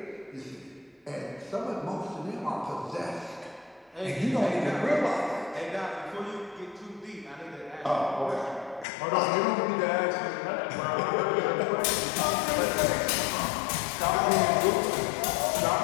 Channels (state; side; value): drops out; right; at 8.8 s